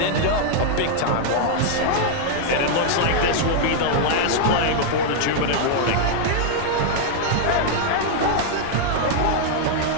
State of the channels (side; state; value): both; different; correlation -0.01